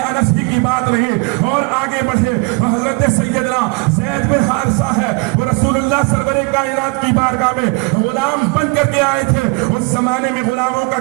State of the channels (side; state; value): left; quieter; 29.9 dB